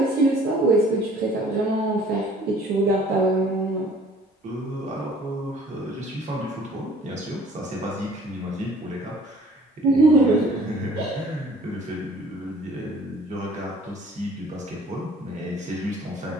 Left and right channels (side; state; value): both; normal; correlation 0.53